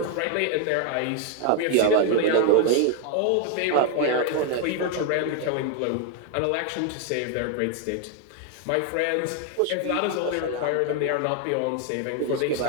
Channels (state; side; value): different; both; correlation 0.00